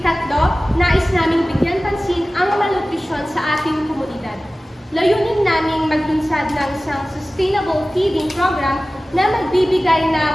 nais naming bigyan pansin ang malnutrisyon sa ating komunidad. Layunin naming maglunsad ng isang sustainable feeding program na magbibigay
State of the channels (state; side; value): normal; both; correlation 0.97